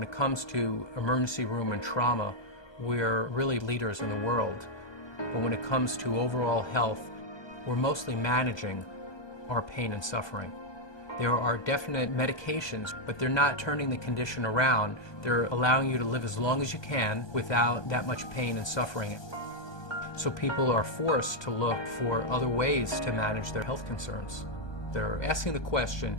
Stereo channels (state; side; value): late; right; 1.2 ms